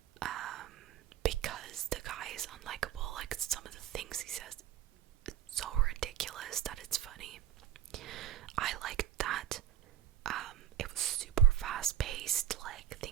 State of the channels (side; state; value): left; quieter; 11.1 dB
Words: because the guy is unlikable. Like, some of the things he says, it's so ridiculous that it's funny. I liked that. It was super fast paced, like